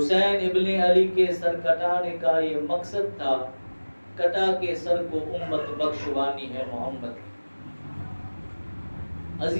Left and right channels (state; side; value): inverted; both; correlation -1.00